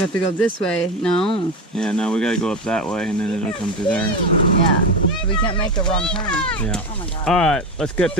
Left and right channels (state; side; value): normal; both; correlation 0.20